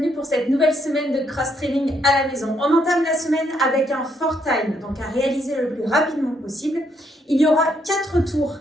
pour cette nouvelle semaine de cross-training à la maison. On entame la semaine avec un 4 time, donc à réaliser le plus rapidement possible. Il y aura 4 tours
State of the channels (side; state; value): both; normal; correlation 0.73